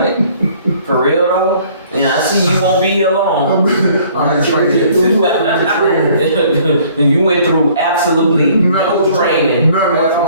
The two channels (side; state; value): both; inverted; correlation -0.57